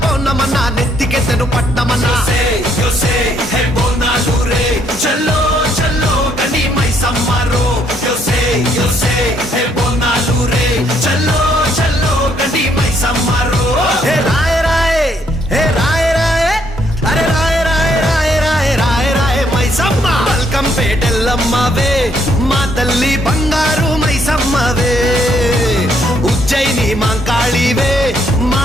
పౌర్ణమన్న నెత్తికెత్తెను పట్టమన్న చల్లో చల్లో కని మైసమ్మరో బోనాలు రే చల్లో చల్లో కని మైసమ్మరో హే రాయ రాయ హే రాయ రాయ అరే రాయ రాయ రాయ రాయ రాయ రాయ మైసమ్మ బల్కం పేటెల్లమ్మవే మా తల్లి బంగారు మైసమ్మవే ఉజ్జయిని మాంకాళివే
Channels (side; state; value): both; normal; correlation 0.70